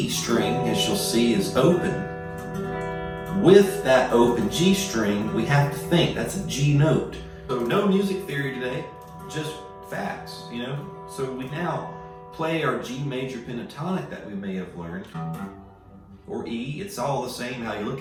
string, as you'll see, is open. With that open G string, we have to think that's a G note. So no music theory today, just facts, you know? So we now play our G major pentatonic that we may have learned, or E, it's all the same how you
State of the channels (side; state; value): both; identical; correlation 1.00